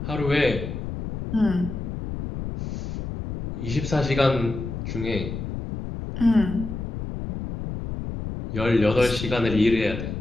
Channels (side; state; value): left; noise; rumble, 6 dB below the sound